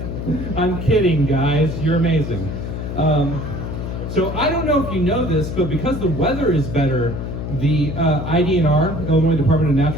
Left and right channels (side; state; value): left; noise; hum, 5 dB below the sound